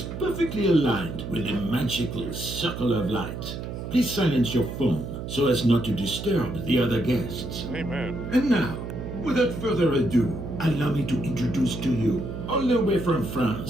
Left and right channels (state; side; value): noise; right; hum, 7 dB below the sound